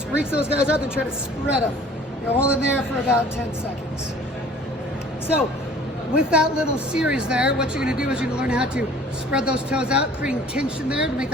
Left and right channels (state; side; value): normal; both; correlation 0.50